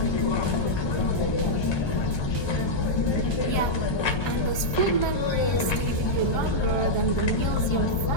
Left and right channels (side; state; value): right; late; 1.2 ms